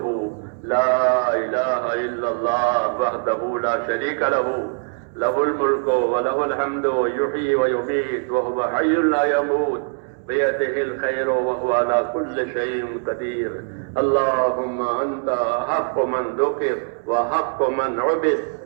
لا إله إلا الله وحده لا شريك له له الملك وله الحمد يحيي ويميت وهو حي لا يموت بيده الخير وهو على كل شيء قدير. اللهم أنت حق من ذكر وحق من عبد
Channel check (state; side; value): silent; left; 57 dB below the other